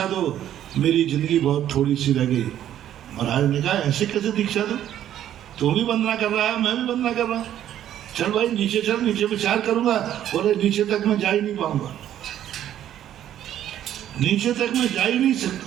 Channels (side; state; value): left; quieter; 11.3 dB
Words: दो, मेरी जिंदगी बहुत थोड़ी सी रह गई। महाराज ने कहा ऐसे कैसे दीक्षा दो, तू भी वंदना कर रहा है, मैं भी वंदना कर रहा हूँ, चल भाई नीचे चल, नीचे विचार करूंगा। बोले नीचे तक मैं जा ही नहीं पाऊंगा, नीचे तक मैं जा ही नहीं